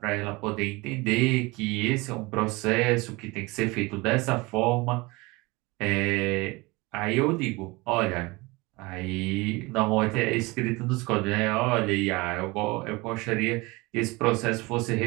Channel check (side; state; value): left; quieter; 23.8 dB